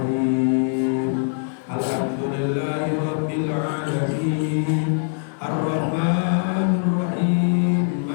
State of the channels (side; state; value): right; silent; digital silence